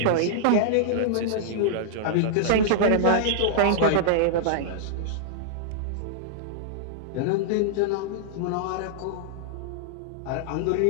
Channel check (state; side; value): different; both; correlation -0.01